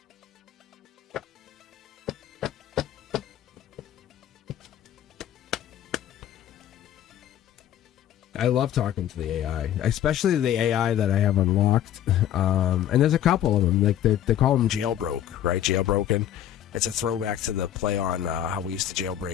I love talking to the AI, especially the AI that I have unlocked. And there's a couple of them. Like they call them jailbroke, right? Jailbroken. It's a throwback to the play on how we used to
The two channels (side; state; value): right; quieter; 11.0 dB